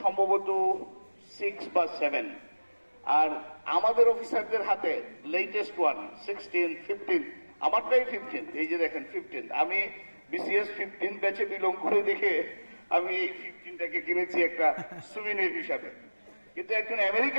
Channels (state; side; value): inverted; both; correlation -1.00